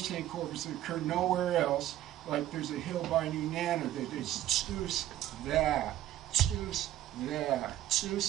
name corpus that occur nowhere else. Like there's a hill by New Nana that is tsus that, tsus that.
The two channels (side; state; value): left; quieter; 13.2 dB